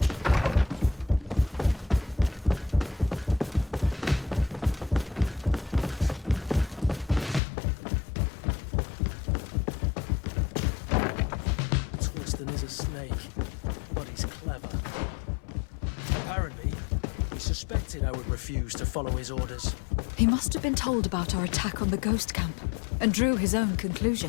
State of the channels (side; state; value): right; drops out; at 7.4 s